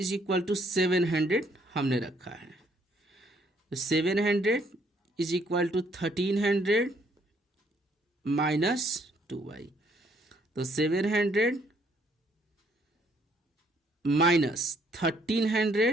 टू 700 हमने रखा है। तो 700 is equal to 1300 minus 2y, तो 700 minus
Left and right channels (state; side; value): normal; both; correlation 0.67